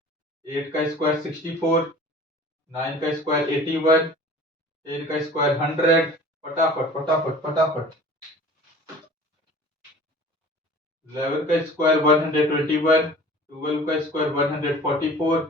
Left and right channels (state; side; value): normal; both; correlation 0.44